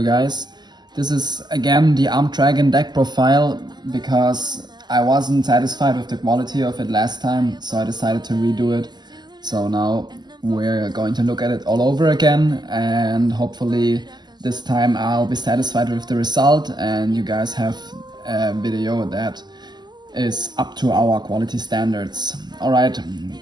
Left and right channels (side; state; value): left; late; 0.21 ms